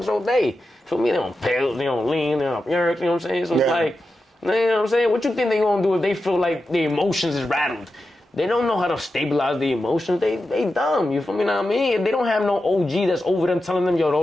all day. You feel me? They on pills, they on lean, they on yerks, you know what I'm saying? So it's like, you know what I'm saying? What you think they gonna do if they feel like their emotions is rattled? They don't know how to stabilize the emotions. They dumb. You feel me? Know what I mean? They don't have no OG that's over them telling them, yo,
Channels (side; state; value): both; normal; correlation 0.90